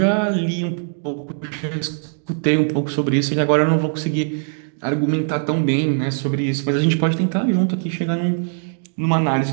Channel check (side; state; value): left; silent; 65 dB below the other